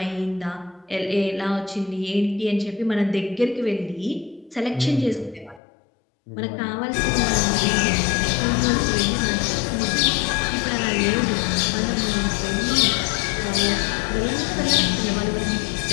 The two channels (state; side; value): drops out; right; at 5.6 s